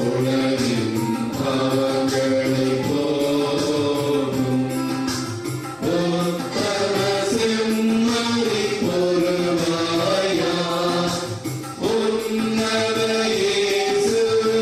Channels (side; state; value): both; identical; correlation 1.00